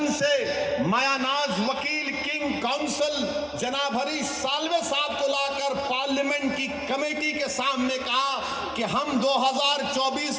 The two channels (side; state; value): both; identical; correlation 1.00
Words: से। मायानाज वकील किंग काउंसिल जनाब हरीश साल्वे साहब को लाकर पार्लियामेंट की कमेटी के सामने कहा कि हम 2024